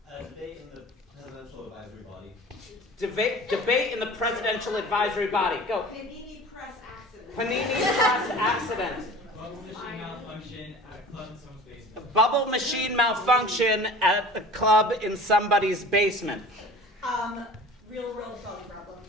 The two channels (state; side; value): normal; both; correlation 0.42